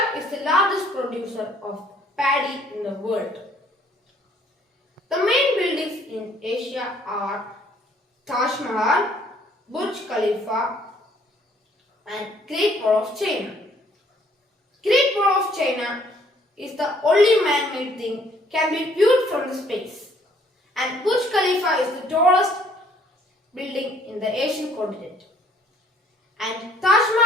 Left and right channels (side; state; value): both; normal; correlation 0.62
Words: is the largest producer of paddy in the world. The main buildings in Asia are Taj Mahal, Burj Khalifa and Great Wall of China. Great Wall of China is the only man-made thing can be viewed from the space. And Burj Khalifa is the tallest building in the Asian continent. And Taj